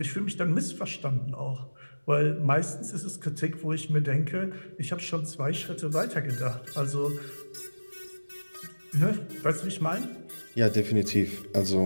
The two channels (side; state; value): both; inverted; correlation -1.00